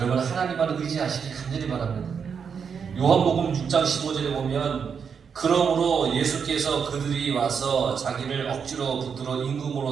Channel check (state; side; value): quieter; left; 6.6 dB